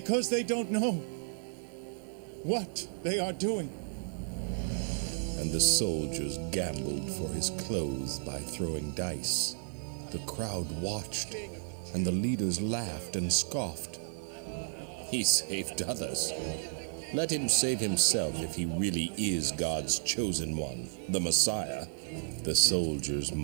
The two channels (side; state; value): left; silent; digital silence